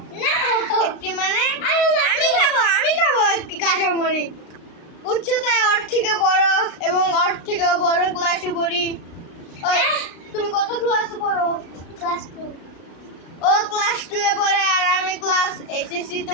না একটি মানে আমি খাবো একটি কাঁচামরিচ। উচ্চতায় ওর থেকে বড় এবং ওর থেকে বড় ক্লাসে পড়ি। তুমি কত ক্লাসে পড়ো? ক্লাস 2। ও ক্লাস 2 এ পড়ে আর আমি ক্লাস এসএসসি তে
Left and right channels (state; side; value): late; right; 36 ms